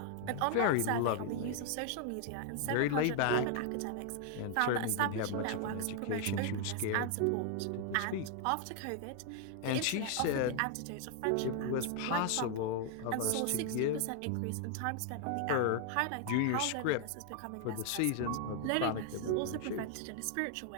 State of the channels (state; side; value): different; both; correlation 0.00